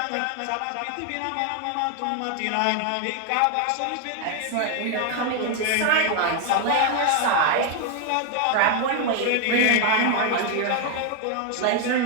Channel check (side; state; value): both; different; correlation 0.01